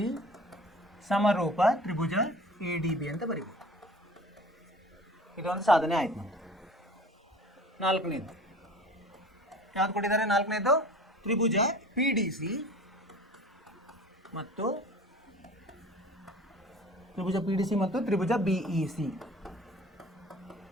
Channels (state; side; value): normal; both; correlation 0.43